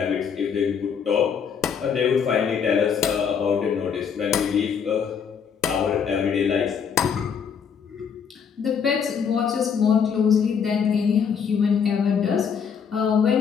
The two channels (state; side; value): quieter; right; 6.9 dB